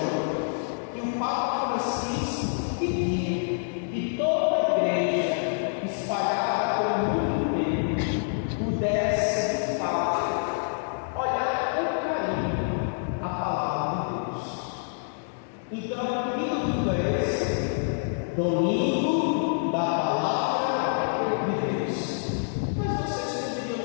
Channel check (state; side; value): silent; right; digital silence